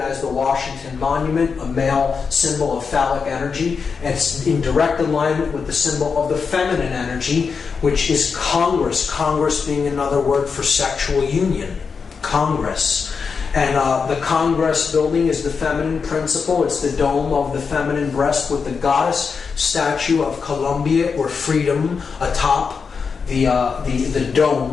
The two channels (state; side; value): quieter; right; 5.5 dB